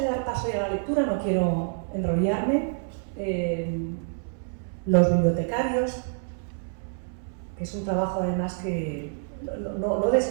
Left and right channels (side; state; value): left; silent; 60 dB below the other